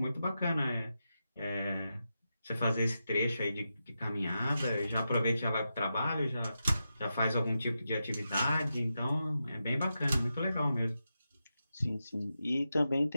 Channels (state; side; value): inverted; both; correlation -0.88